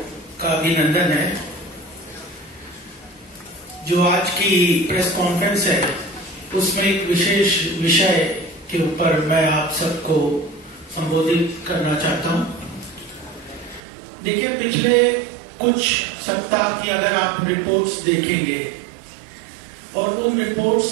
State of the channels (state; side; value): drops out; left; at 13.8 s